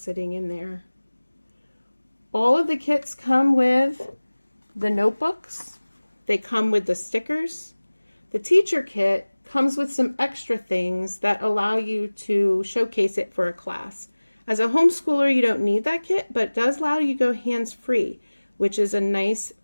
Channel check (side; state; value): both; inverted; correlation -1.00